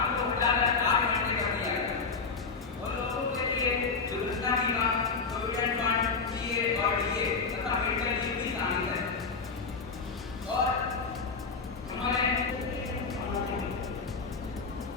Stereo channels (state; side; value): quieter; right; 4.7 dB